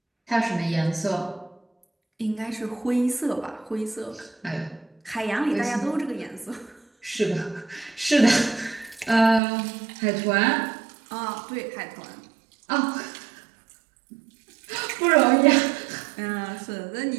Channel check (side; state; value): left; drops out; at 9.4 s